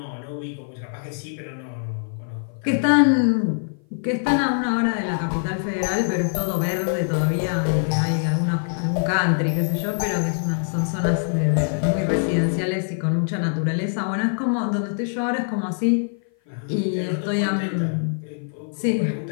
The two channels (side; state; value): right; silent; 55 dB below the other